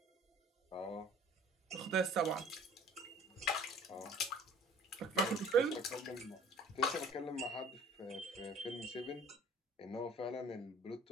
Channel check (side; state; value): both; normal; correlation 0.51